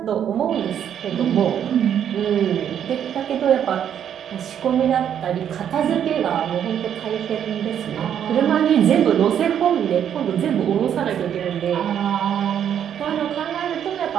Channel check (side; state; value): left; quieter; 9.2 dB